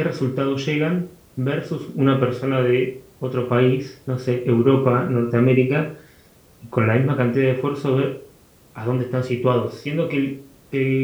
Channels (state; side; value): identical; both; correlation 1.00